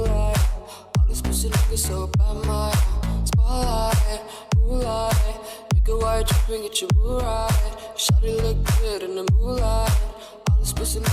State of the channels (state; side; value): identical; both; correlation 1.00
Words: All these pussy niggas so bad, my spotlight, moonlight. Nigga, why you tripping? Get your Mariah. Shawty look good in the moonlight. All these pussy